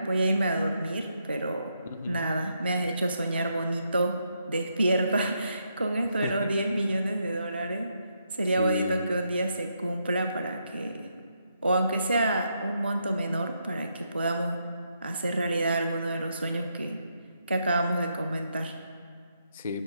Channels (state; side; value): inverted; both; correlation -0.79